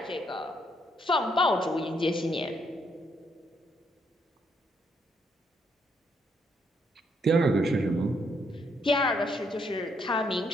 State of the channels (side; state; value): both; normal; correlation 0.73